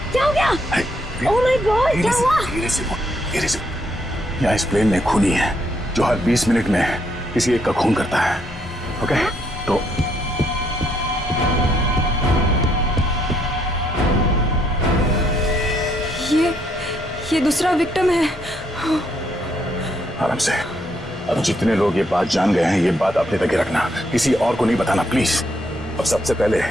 क्या हो गया? ओह माय गॉड, क्या हुआ? धीरे से बोल, धीरे से। यहाँ इस प्लेन में खूनी है जो हर 20 मिनट में किसी एक का खून करता है। ओके? तो ये दूसरा विक्टिम है। आराम से। अब जितने लोग ये बात जान गए हैं, ये बात अपने तक ही रखना, किसी और को नहीं बताना प्लीज। अब सबसे पहले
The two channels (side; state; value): both; normal; correlation 0.73